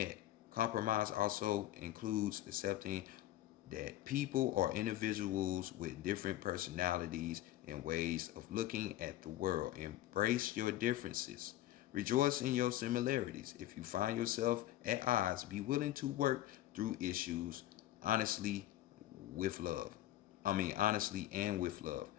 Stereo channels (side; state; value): right; quieter; 14.4 dB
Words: Compromise also includes accepting that people are individuals with different personalities and ways of looking at the world. Embrace your differences. Rejoice in your similarities. If you find yourself at odds, be willing to work through issues honestly with love. Honestly and with love.